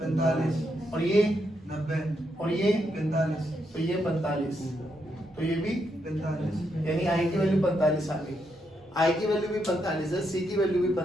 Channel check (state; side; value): normal; both; correlation 0.80